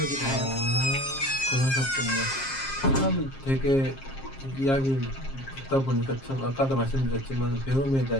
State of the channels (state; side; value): late; right; 7.5 ms